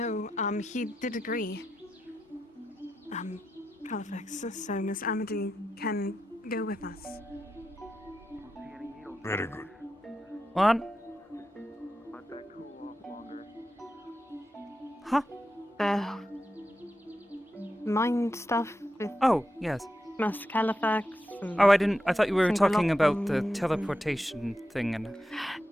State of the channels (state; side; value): normal; both; correlation 0.88